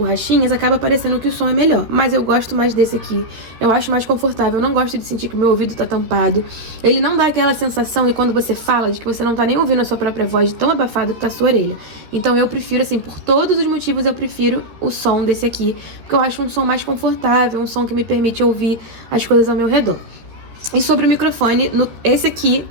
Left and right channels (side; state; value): left; late; 13 ms